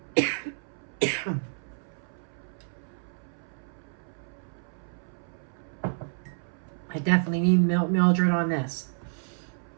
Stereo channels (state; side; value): silent; left; 58 dB below the other